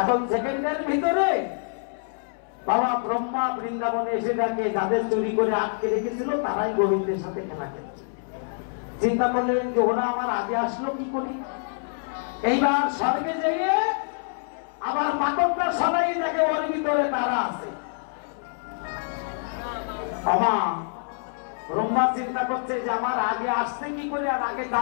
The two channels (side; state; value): right; silent; 61 dB below the other